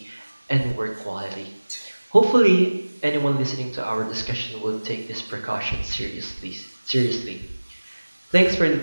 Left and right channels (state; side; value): inverted; both; correlation -1.00